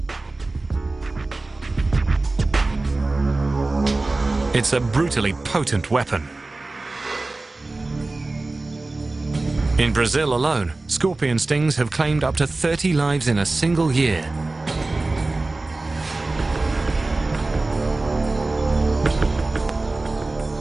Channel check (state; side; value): quieter; left; 3.2 dB